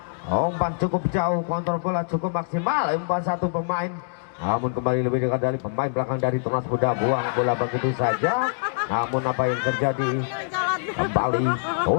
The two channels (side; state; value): right; silent; digital silence